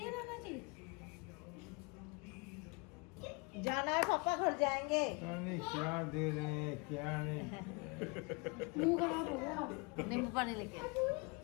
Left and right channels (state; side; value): quieter; right; 30.8 dB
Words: नाना जी? जाना है पापा, घर जाएंगे। पता नहीं क्या दे रहे हैं क्या नहीं। मुंह खराब हो गया। नींबू पानी लेके आ।